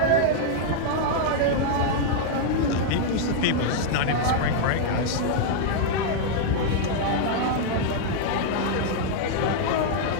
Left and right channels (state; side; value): different; both; correlation -0.01